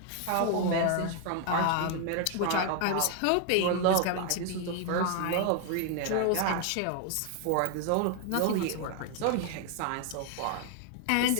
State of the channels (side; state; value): both; different; correlation 0.00